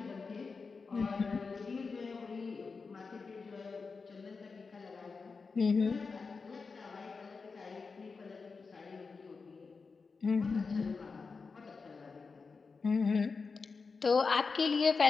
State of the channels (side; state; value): right; quieter; 4.7 dB